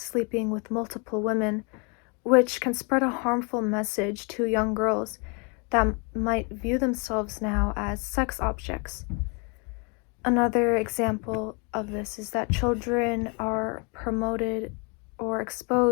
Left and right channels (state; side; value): quieter; right; 33.7 dB